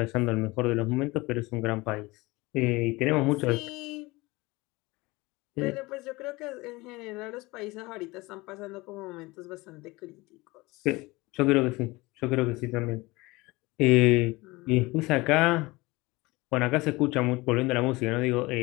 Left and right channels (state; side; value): quieter; right; 22.2 dB